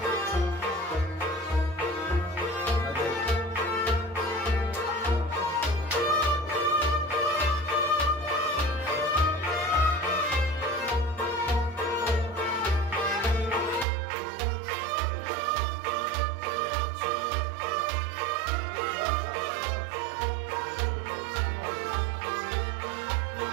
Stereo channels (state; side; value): drops out; left; at 13.9 s